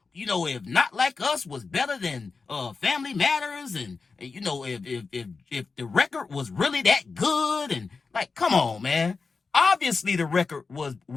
if Not Like Us was better than Family Matters and, if the record was really that good and, like, come on, man. Obviously, the record was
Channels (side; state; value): right; quieter; 4.5 dB